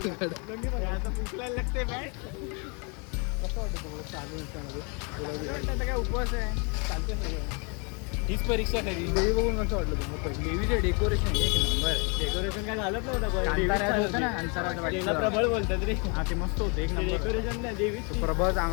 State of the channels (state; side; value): quieter; right; 34.0 dB